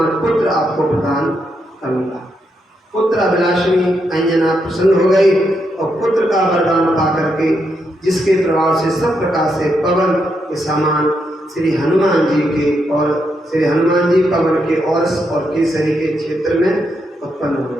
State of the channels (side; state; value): both; normal; correlation 0.81